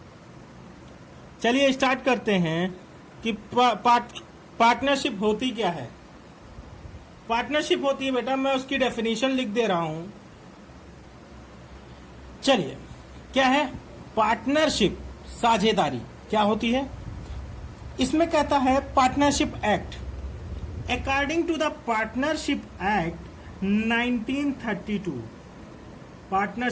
चलिए स्टार्ट करते हैं कि पार्टनरशिप होती क्या है। पार्टनरशिप होती है बेटा, मैं उसकी डेफिनेशन लिख दे रहा हूं। चलिए, क्या है पार्टनरशिप? साझेदारी क्या होती है? इसमें कहता है partnership act. According to the partnership act 1932,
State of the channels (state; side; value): identical; both; correlation 1.00